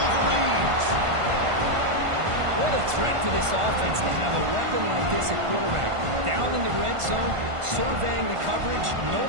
What a threat for this offense to have a weapon like this at quarterback. Down in the red zone, surveying the coverage,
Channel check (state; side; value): late; left; 1.5 ms